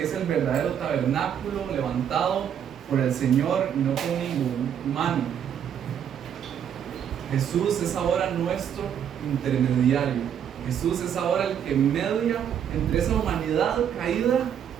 es el verdadero tabernáculo levantado por el Señor y no por ningún humano. Jesús es ahora nuestro intermediario. Jesús es ahora el que media entre esa humanidad caída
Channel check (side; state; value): left; quieter; 8.9 dB